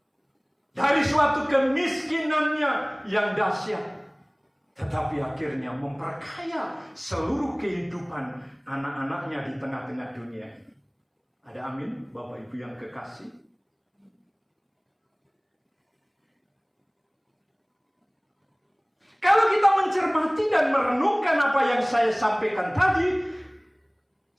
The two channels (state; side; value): identical; both; correlation 1.00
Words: Dari suatu kemiskinannya yang dahsyat. Tetapi akhirnya memperkaya seluruh kehidupan anak-anaknya di tengah-tengah dunia ini. Ada amin, Bapak Ibu yang kekasih? Kalau kita mencermati dan merenungkan apa yang saya sampaikan tadi,